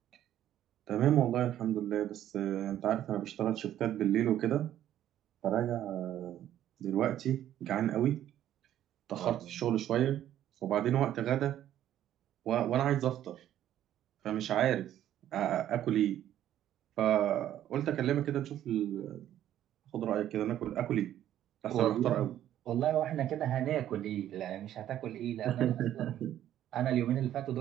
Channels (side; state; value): left; quieter; 11.8 dB